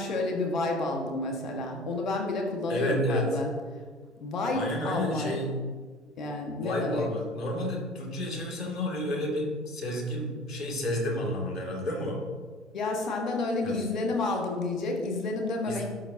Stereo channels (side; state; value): both; normal; correlation 0.44